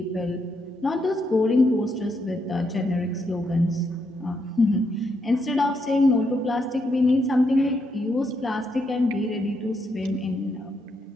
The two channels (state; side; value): normal; both; correlation 0.78